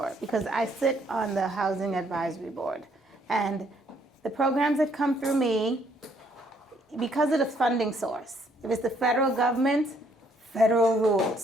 because I sit on the Housing Advisory Board, and the programs that come through me, because of the funding source, if it's the federal government, federal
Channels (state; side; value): normal; both; correlation 0.67